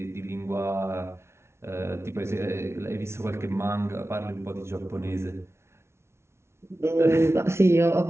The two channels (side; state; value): left; late; 0.13 ms